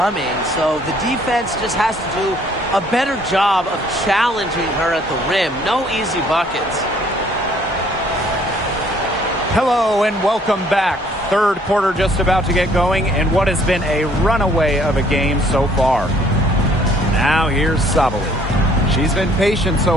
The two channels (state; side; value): normal; both; correlation 0.61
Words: So the defense just has to do a better job of challenging her at the rim. No easy buckets. Hello and welcome back. Third quarter just about to get going, and what has been a runaway of a game so far. Now here's Sabali. She's been patient